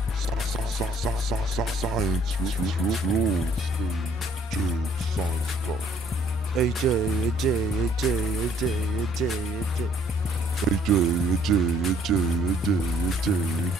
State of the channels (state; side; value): normal; both; correlation 0.62